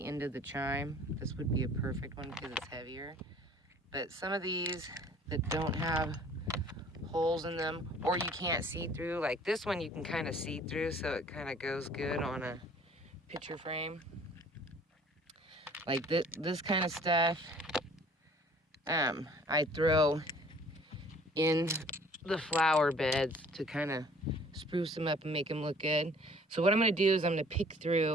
end of the chime. This would be a perfect one because it's heavier. But some of these that don't have holes in them, or you can't see through, like this one you can kind of see through, so it kind of goes good on a picture frame. Like this kind of stuff, I throw in the flower beds to kind of spruce them up and make them look good. So what I'm going to do is I'm going to pick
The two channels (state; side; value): normal; both; correlation 0.54